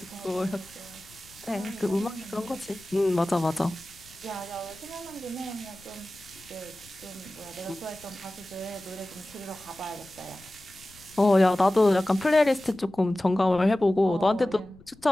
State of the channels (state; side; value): noise; left; rumble, 25 dB below the sound